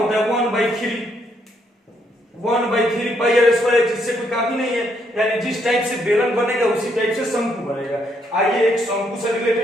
है 1/3 πr², जिससे कोई काफी नहीं है यानी जिस टाइप से बेलन बनेगा उसी टाइप से शंकु बनेगा। आइए एक शंकु से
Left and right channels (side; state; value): both; normal; correlation 0.73